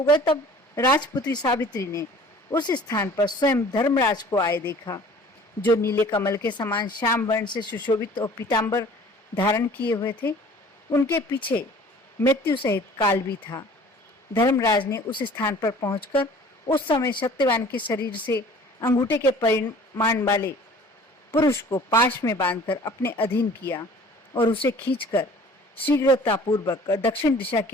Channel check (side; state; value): both; normal; correlation 0.49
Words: गए तब राजपुत्री सावित्री ने उस स्थान पर स्वयं धर्मराज को आए देखा, जो नीले कमल के समान श्याम वर्ण से सुशोभित और पीतांबर धारण किए हुए थे। उनके पीछे मृत्यु सहित काल भी था। धर्मराज ने उस स्थान पर पहुंचकर उस समय सत्यवान के शरीर से अंगूठे के परिमाण वाले पुरुष को पाश में बांधकर अपने अधीन किया और उसे खींचकर शीघ्रतापूर्वक दक्षिण दिशा